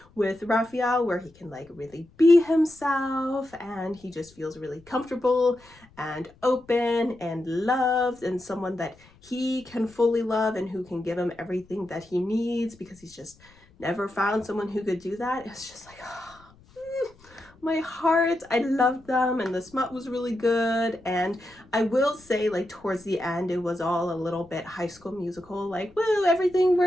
with Raphael where he can like really be himself, and he just feels really comfortable and open and loved, and someone that he can fully love and who can give him everything that he needs, because he's just never found someone who could do that. It's just like, my heart. I loved them, and the smut was really good. And I will say, like, towards the end, it was all a little bit High School Musical, like, woo, everything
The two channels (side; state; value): left; noise; rumble, 27 dB below the sound